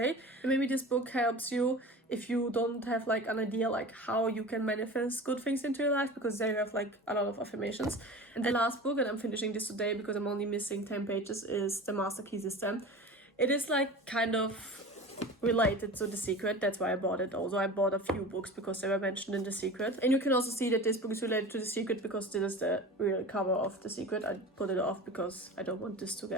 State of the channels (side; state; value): both; normal; correlation 0.35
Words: And maybe this book helps you if you don't have like an idea like how you can manifest good things into your life, because they have like a lot of affirmations. And the last book, and I'm finishing this today because I'm only missing 10 pages, is The Master Key System. It is like kind of related to The Secret. That's why I bought it. Also, I bought a few books because they were mentioned in The Secret. And you can also see that this book is related to The Secret because this is the real cover of The Secret. I put it off because I don't want this to